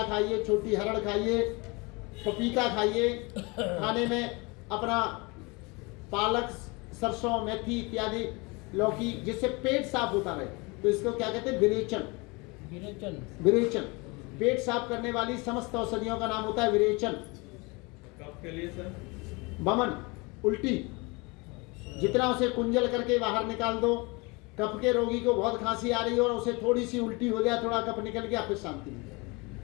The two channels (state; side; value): quieter; right; 27.2 dB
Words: खाइए, छोटी हरड़ खाइए, पपीता खाइए, खाने में अपना पालक, सरसों, मेथी इत्यादि, लौकी, जिससे पेट साफ होता रहे। तो इसको क्या कहते हैं? विरेचन। विरेचन पेट साफ करने वाली समस्त औषधियों का नाम होता है विरेचन। कफ के लिए सर? वमन, उल्टी, जितना उसे कुंजल करके बाहर निकाल दो। कफ के रोगी को बहुत खांसी आ रही है और उसे थोड़ी सी उल्टी हो जाए, थोड़ा कफ निकल गया, फिर शांति